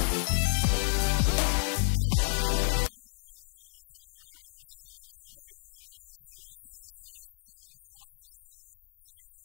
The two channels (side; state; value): right; silent; digital silence